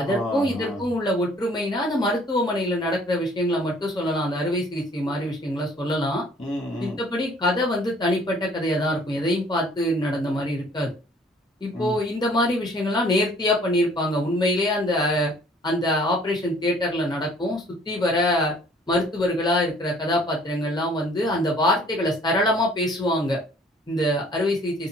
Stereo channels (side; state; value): both; normal; correlation 0.56